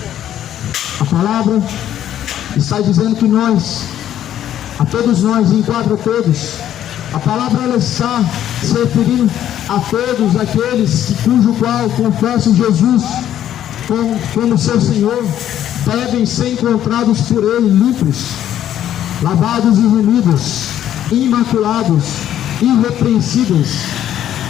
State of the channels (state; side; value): quieter; right; 11.2 dB